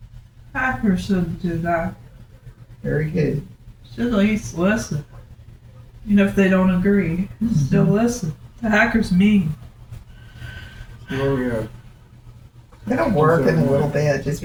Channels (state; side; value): identical; both; correlation 1.00